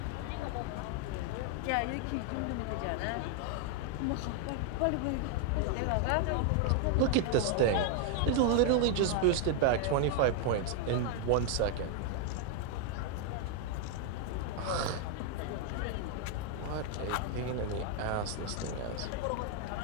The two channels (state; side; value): different; both; correlation 0.00